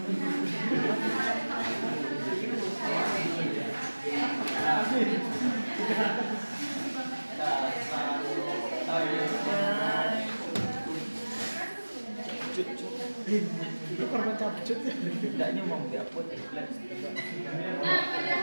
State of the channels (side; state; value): both; inverted; correlation -1.00